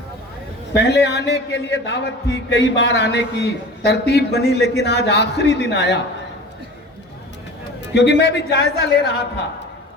पहले आने के लिए दावत थी, कई बार आने की तरतीब बनी, लेकिन आज आखिरी दिन आया क्योंकि मैं भी जायजा ले रहा था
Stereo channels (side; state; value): both; normal; correlation 0.38